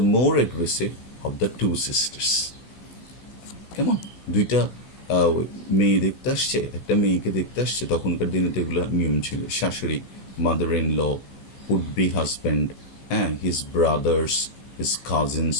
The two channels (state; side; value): late; right; 15 ms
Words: more aggressive of the two sisters. কেমন, দুইটা মেয়ে দেখতে আসছে, একটা মেয়েকে দেখতে আসছে, তখনকার দিনে তো এগুলো নিয়ম ছিল, শাশুড়ি, mother in law, would be husband, হ্যাঁ, his brothers, his cousins